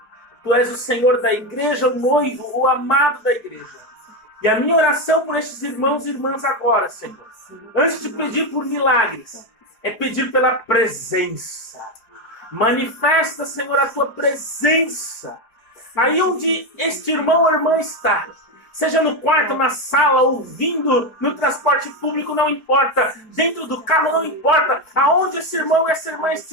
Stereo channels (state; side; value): late; right; 4.6 ms